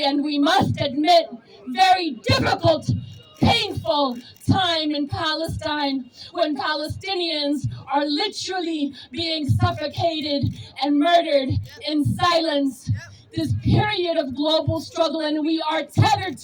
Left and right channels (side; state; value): both; identical; correlation 1.00